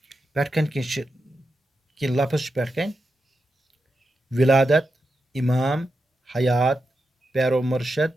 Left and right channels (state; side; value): normal; both; correlation 0.88